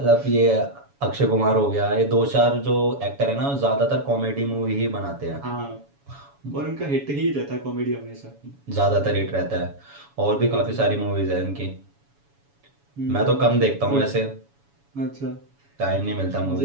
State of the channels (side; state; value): left; late; 7.1 ms